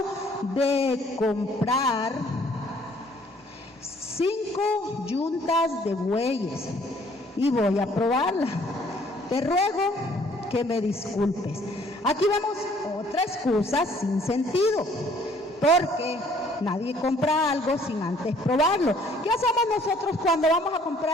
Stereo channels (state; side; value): normal; both; correlation 0.60